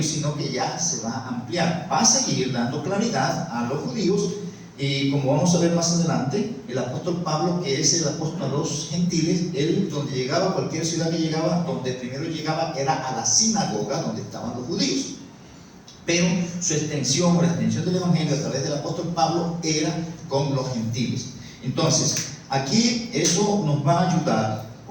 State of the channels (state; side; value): identical; both; correlation 1.00